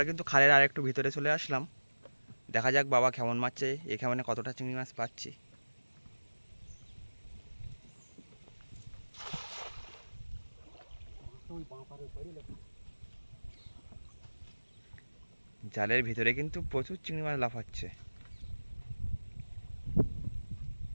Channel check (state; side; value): inverted; both; correlation -1.00